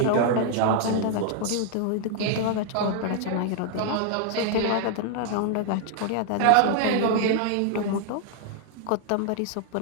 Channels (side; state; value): both; different; correlation 0.00